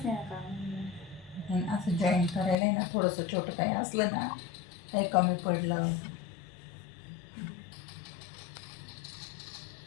नाही काम. असं जॉईन करायला ना थोडंसं छोटं काही असलं ना, काही कमी पडलं,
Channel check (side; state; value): right; drops out; at 2.6 s